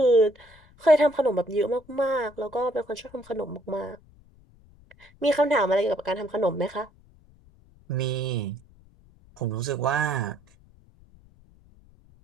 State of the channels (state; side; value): noise; left; rumble, 27 dB below the sound